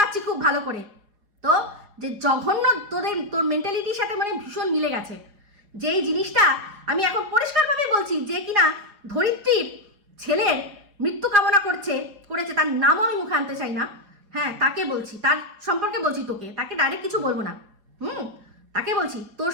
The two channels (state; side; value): late; left; 4.8 ms